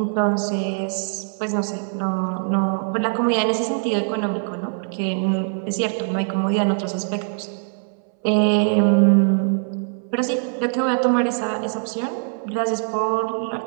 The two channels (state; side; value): silent; left; 64 dB below the other